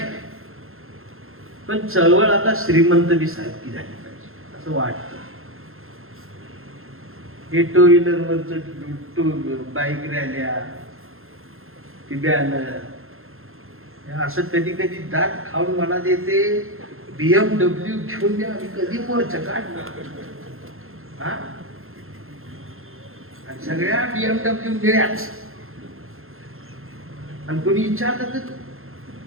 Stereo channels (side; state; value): left; late; 0.61 ms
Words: आहे, पण चळवळ आता श्रीमंत बी सारखी झाली पाहिजे असं वाटतं. हे टू व्हीलरवरच बाईक रॅल्या, ती बॅनर, असं कधी कधी दात खाऊन मनात येते BMW घेऊन द्या, आम्ही कधी मोर्चा काढणार. आणि सगळ्या BMW मिळ्याच. आणि कोणी विचारलं तर